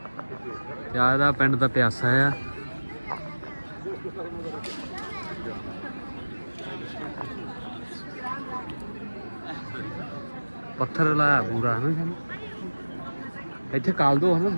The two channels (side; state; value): both; inverted; correlation -1.00